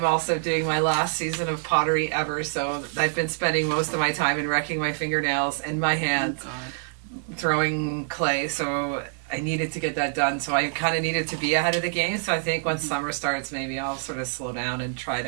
also doing my last season of pottery ever, so I've been spending most of my time in wrecking my fingernails and my hands throwing clay, so I needed to get that done, so I kind of needed to be ahead of the game, so I think once summer starts, maybe I'll sort of slow down and try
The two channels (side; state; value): left; silent; 61 dB below the other